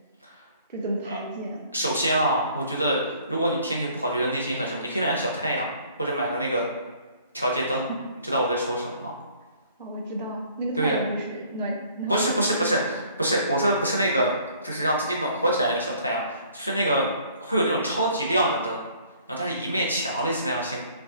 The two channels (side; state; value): both; inverted; correlation -0.56